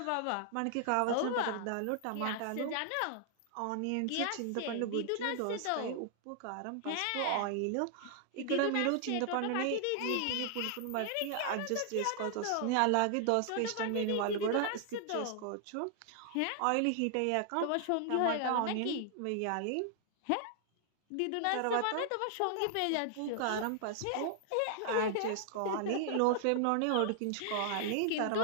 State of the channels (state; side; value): different; both; correlation 0.00